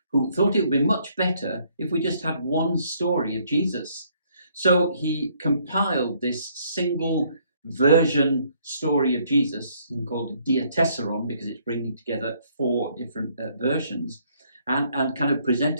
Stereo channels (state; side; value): inverted; both; correlation -0.67